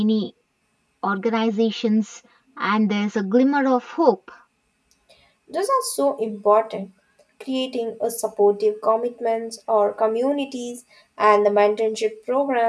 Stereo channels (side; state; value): both; identical; correlation 1.00